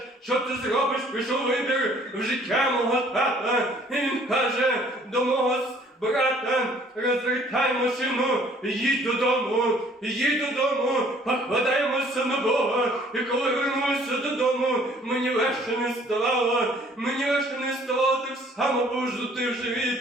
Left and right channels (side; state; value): both; normal; correlation 0.58